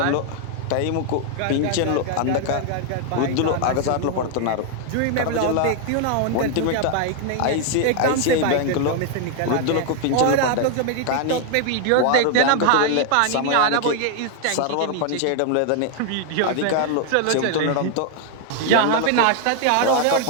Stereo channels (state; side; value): different; both; correlation 0.00